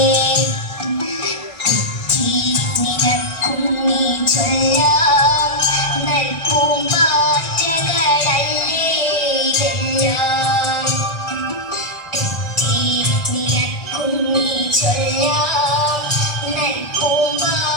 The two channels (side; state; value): right; late; 1.5 ms